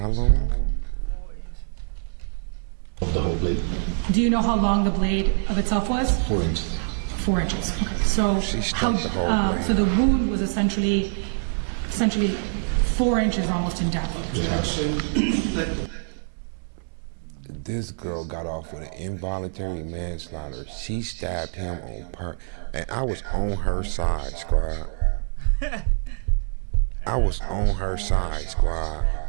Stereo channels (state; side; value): silent; left; digital silence